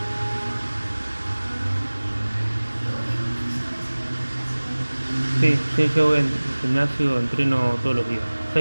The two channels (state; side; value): inverted; both; correlation -1.00